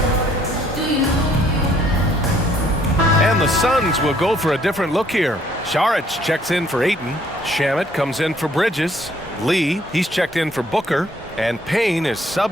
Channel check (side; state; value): both; normal; correlation 0.64